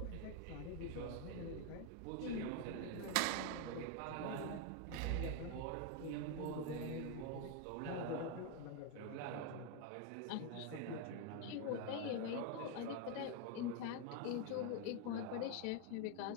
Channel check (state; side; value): different; both; correlation 0.01